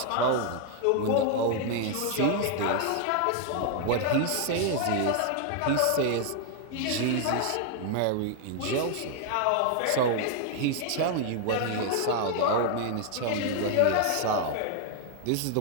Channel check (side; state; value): both; different; correlation 0.00